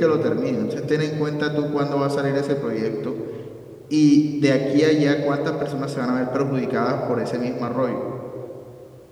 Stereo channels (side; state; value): both; identical; correlation 1.00